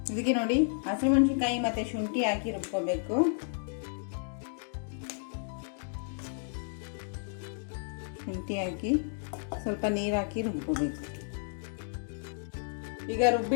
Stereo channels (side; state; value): right; silent; digital silence